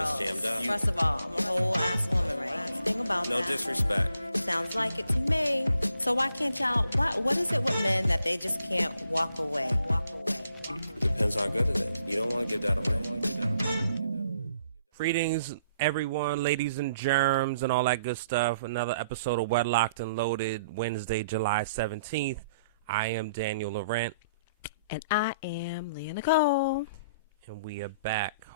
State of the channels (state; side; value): inverted; both; correlation -0.67